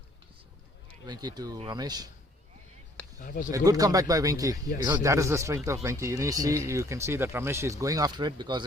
Venki to Ramesh. A good comeback by Venki. Yes, that is the strength of Venki. You can see that Ramesh is going after it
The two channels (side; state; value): both; normal; correlation 0.60